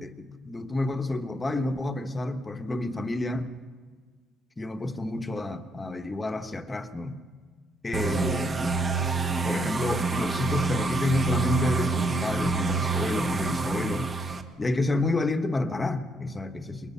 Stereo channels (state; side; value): normal; both; correlation 0.74